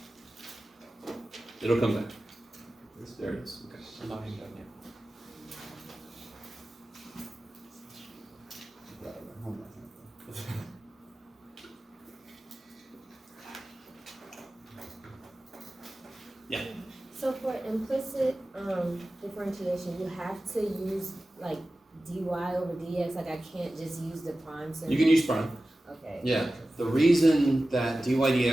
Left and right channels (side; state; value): both; normal; correlation 0.95